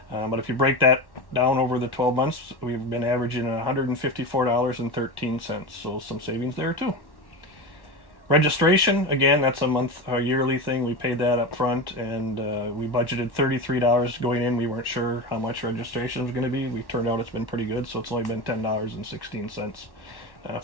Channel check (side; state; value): right; late; 1.1 ms